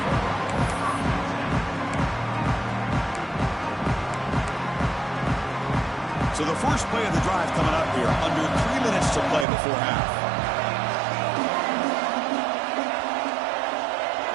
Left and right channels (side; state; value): left; drops out; at 9.5 s